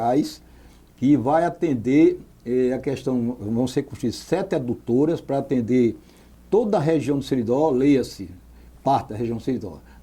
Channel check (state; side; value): identical; both; correlation 1.00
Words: que vai atender a questão, vão ser construídas 7 adutoras para atender toda a região do Seridó, leia-se, parte da região do Seridó,